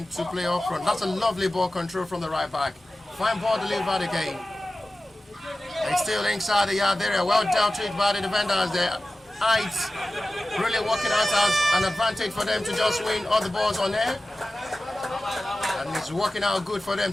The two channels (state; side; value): normal; both; correlation 0.95